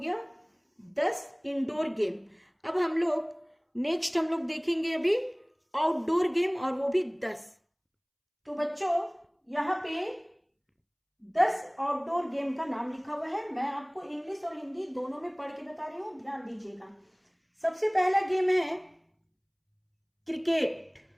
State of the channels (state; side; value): identical; both; correlation 1.00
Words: 10 इंडोर गेम। अब हम लोग देखेंगे अभी आउटडोर गेम, और वो भी 10। तो बच्चों यहाँ पे 10 आउटडोर गेम का नाम लिखा हुआ है। मैं आपको इंग्लिश और हिंदी दोनों में पढ़ के बता रही हूँ, ध्यान दीजिएगा। सबसे पहला गेम है क्रिकेट।